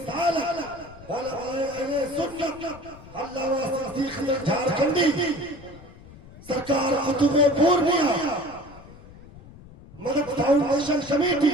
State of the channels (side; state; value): left; noise; rumble, 19 dB below the sound